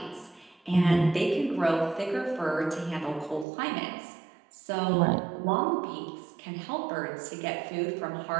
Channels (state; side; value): drops out; left; at 3.5 s